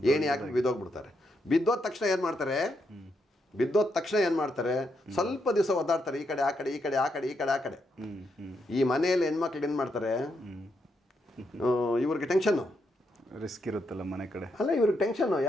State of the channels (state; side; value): normal; both; correlation 0.80